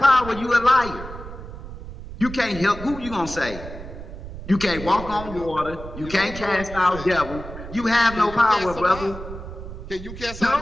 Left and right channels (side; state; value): right; noise; rumble, 12 dB below the sound